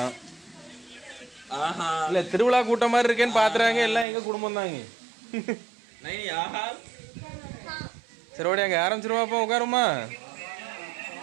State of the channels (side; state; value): left; drops out; at 4.0 s